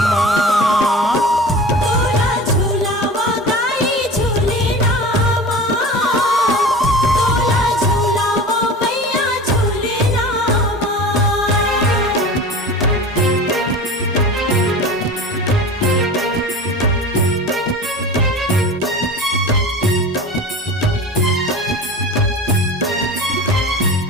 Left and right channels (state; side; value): normal; both; correlation 0.35